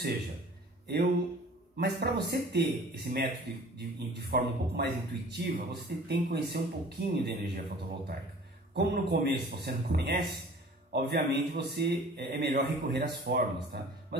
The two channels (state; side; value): normal; both; correlation 0.47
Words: mas para você ter esse método de forma um pouco mais intuitiva, você tem que conhecer um pouquinho de energia fotovoltaica. Como no começo você não conhece, obviamente é melhor recorrer às fórmulas, tá?